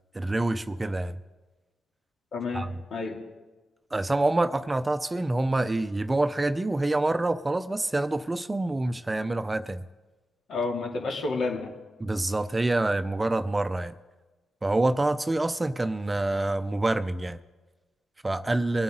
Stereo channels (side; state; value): both; normal; correlation 0.96